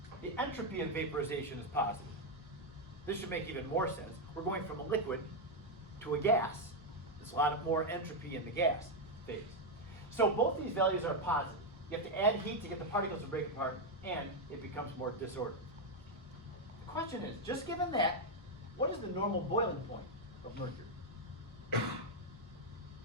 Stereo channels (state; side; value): normal; both; correlation 0.03